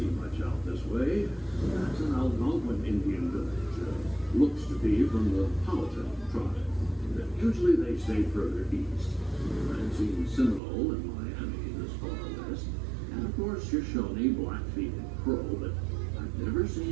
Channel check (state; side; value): drops out; left; at 10.6 s